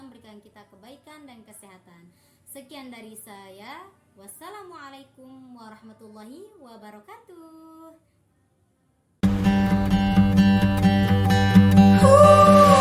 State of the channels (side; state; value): both; identical; correlation 1.00